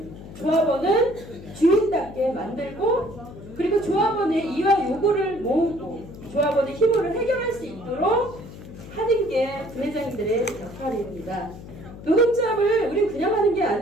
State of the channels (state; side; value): noise; left; hum, 15 dB below the sound